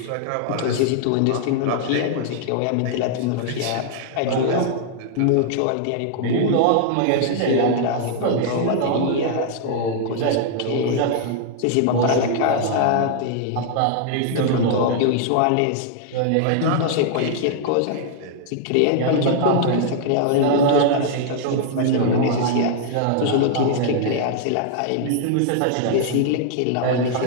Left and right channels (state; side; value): different; both; correlation 0.00